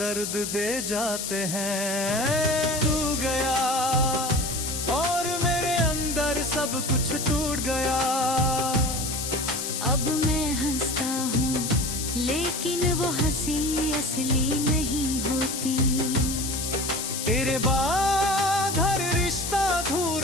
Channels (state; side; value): noise; left; hiss, 4 dB below the sound